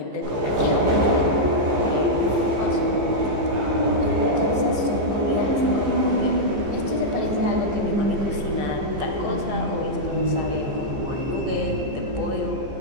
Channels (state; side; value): late; left; 15 ms